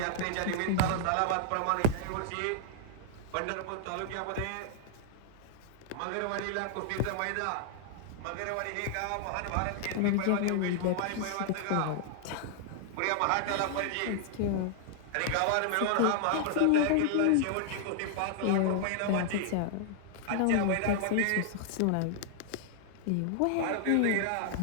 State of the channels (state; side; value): different; both; correlation -0.01